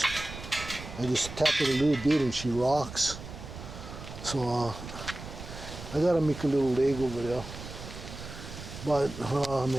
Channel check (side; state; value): right; noise; rumble, 11 dB below the sound